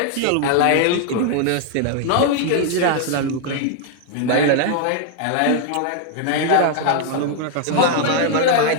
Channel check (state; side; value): different; both; correlation 0.00